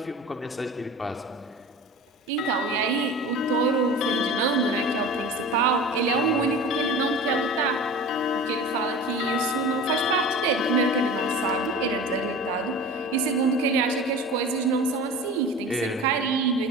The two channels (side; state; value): both; normal; correlation 0.36